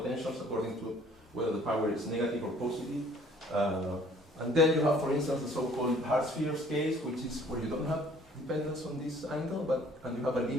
according to whether the power is negative or positive. And then you have, for instance, the so-called hard spheres case, which is where you don't have dependence on this angle, and you have a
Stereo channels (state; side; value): normal; both; correlation 0.56